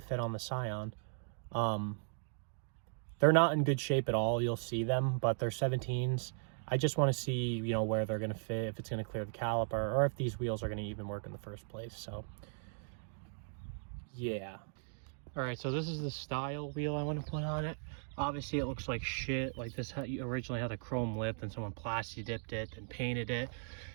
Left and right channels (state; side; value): silent; left; digital silence